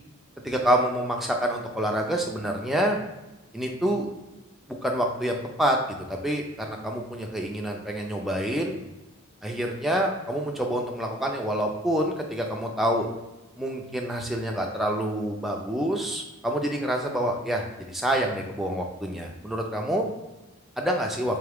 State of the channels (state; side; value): normal; both; correlation 0.56